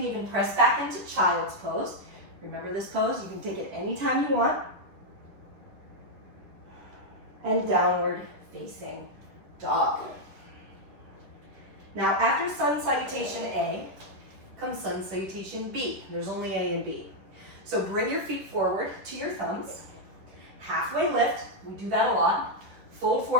even press back into child's pose. Remember this pose? You can take it anytime you want. And downward facing dog. Now after sun salutation A, comes sun salutation B. There's only A and B. So bring your feet forward to your thumbs. Halfway lift, we do that a lot. Fold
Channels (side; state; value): left; late; 10 ms